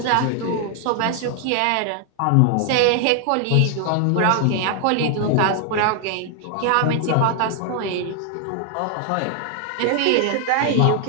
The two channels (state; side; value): different; both; correlation 0.00